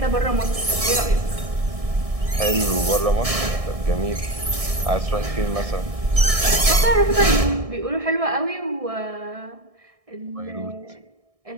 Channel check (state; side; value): late; left; 1.6 ms